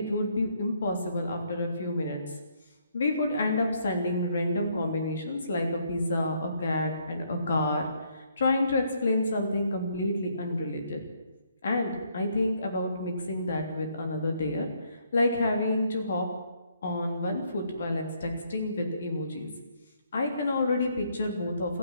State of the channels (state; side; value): inverted; both; correlation -0.70